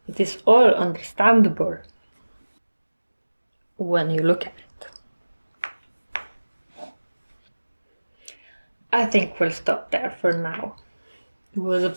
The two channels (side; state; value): both; inverted; correlation -1.00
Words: It is all understandable when you look at it. I think we'll stop there for now. It was a